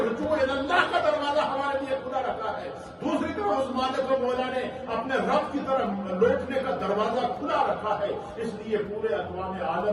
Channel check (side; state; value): both; identical; correlation 1.00